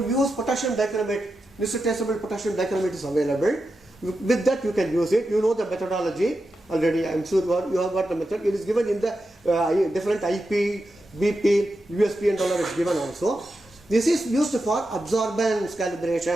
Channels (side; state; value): both; normal; correlation 0.89